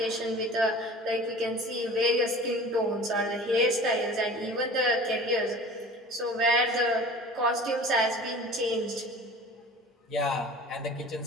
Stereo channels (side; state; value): both; normal; correlation 0.41